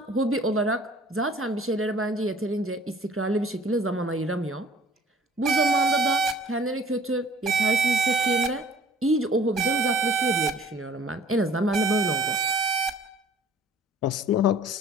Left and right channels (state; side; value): normal; both; correlation 0.52